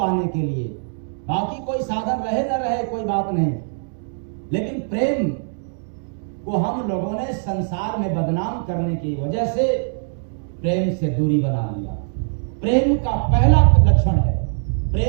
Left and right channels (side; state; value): left; silent; digital silence